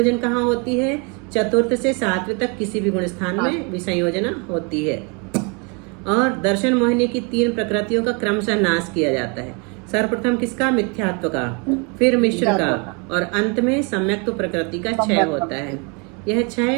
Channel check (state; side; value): quieter; left; 33.0 dB